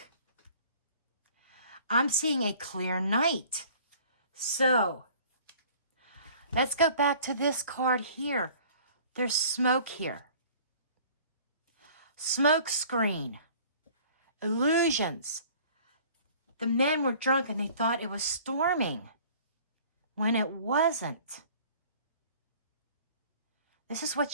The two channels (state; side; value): inverted; both; correlation -0.50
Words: I'm seeing a clear night. So, let's go back to this card here. There's smoke here. Smoke screen. Illusions. The men were drunk and they thought it was storming when it wasn't. This is what